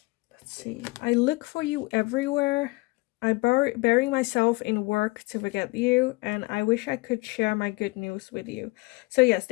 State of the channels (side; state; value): right; quieter; 24.2 dB